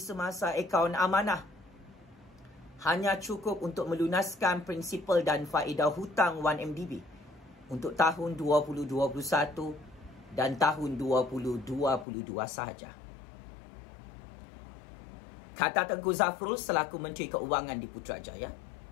akaun amanah hanya cukup untuk melunaskan prinsipal dan faedah hutang 1MDB untuk tahun 2021 dan tahun 2022 sahaja. Kata Tengku Zafrul selaku Menteri Keuangan di Putrajaya,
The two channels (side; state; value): right; drops out; at 12.1 s